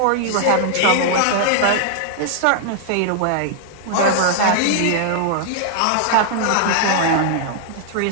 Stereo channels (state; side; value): different; both; correlation -0.01